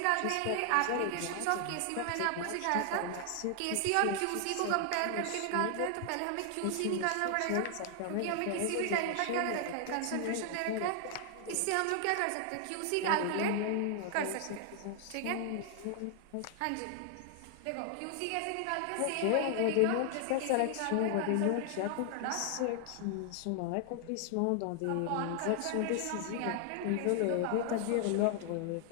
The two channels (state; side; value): different; both; correlation 0.00